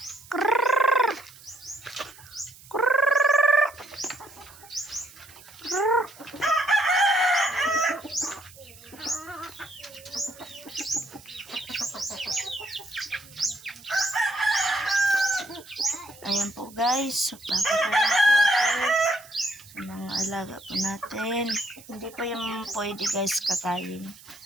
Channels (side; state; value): right; noise; hiss, 21 dB below the sound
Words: Kurrrr! Kurrrr! Kurrrr! Ayan po guys, papakain po ako sa mga alaga po natin. Hindi pa yung pwede guys kakain.